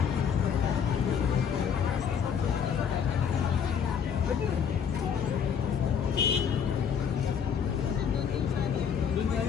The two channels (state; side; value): quieter; right; 7.3 dB